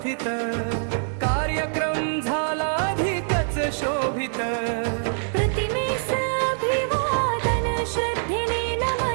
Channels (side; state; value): left; silent; 62 dB below the other